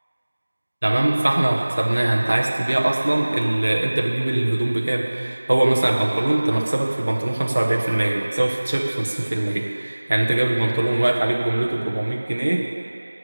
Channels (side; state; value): both; inverted; correlation -1.00